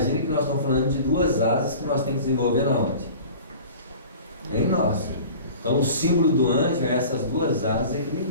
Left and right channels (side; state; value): both; inverted; correlation -0.41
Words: que nós estamos falando de duas asas que nós temos que desenvolver na onde? Em nós. Então o símbolo do anjo é essas duas asas